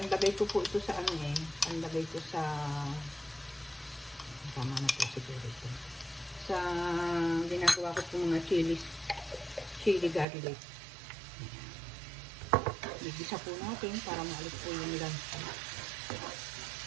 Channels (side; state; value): left; drops out; at 10.2 s